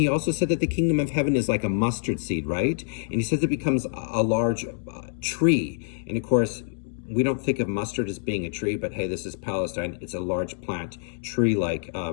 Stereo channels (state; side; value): silent; right; digital silence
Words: also said that the kingdom of heaven is like a mustard seed, right? And he says it becomes a large tree. And of course, we don't think of mustard as being a tree, but hey, this is Palestine. It's a large plant, tree-like,